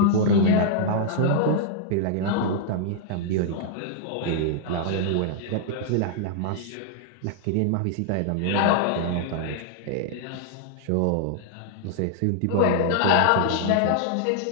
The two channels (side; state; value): both; different; correlation -0.01